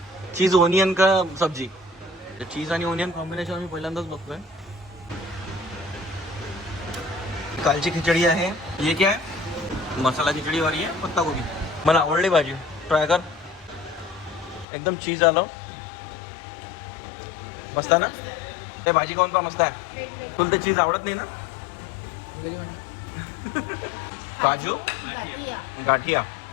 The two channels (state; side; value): drops out; right; at 14.7 s